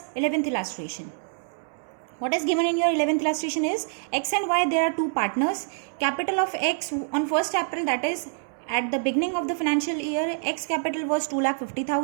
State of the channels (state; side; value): silent; left; 61 dB below the other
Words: 11th illustration. What is given in your 11th illustration is x and y, there are two partners. Capital of x on 1st April, that is at the beginning of the financial year, x capital was